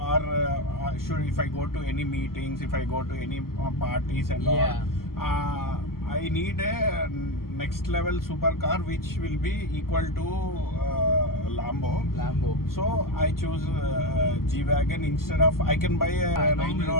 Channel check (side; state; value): right; late; 0.92 ms